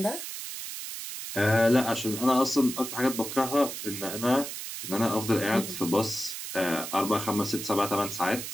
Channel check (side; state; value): right; noise; hiss, 7 dB below the sound